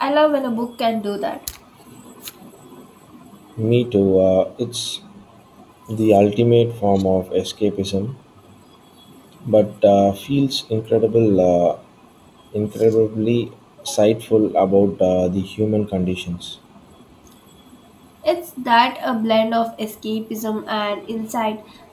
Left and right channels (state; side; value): identical; both; correlation 1.00